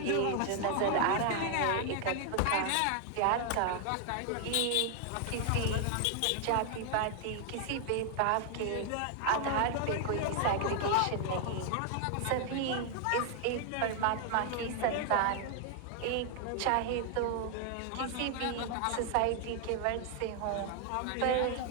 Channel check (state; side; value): different; both; correlation 0.00